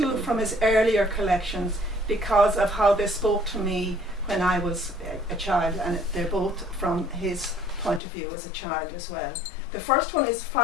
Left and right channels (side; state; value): right; drops out; at 8.0 s